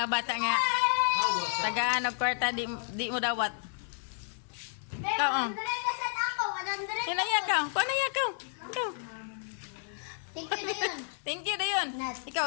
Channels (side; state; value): right; silent; 56 dB below the other